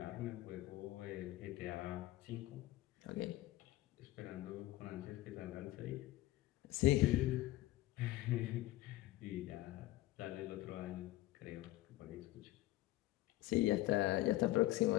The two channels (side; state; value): right; quieter; 16.6 dB